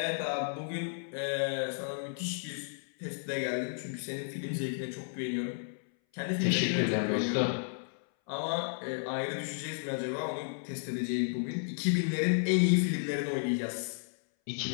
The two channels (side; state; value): right; silent; 56 dB below the other